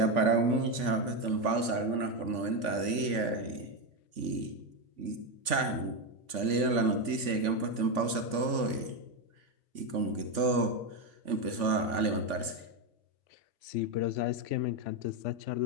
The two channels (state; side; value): late; left; 3.5 ms